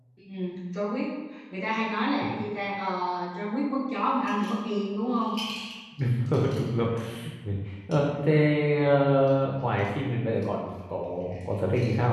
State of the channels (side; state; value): both; identical; correlation 1.00